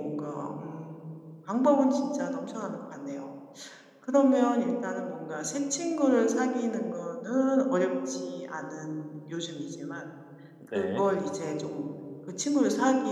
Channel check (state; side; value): identical; both; correlation 1.00